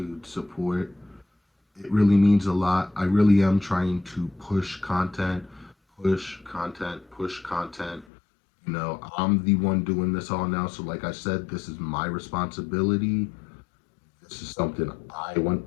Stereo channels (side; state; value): right; drops out; at 8.1 s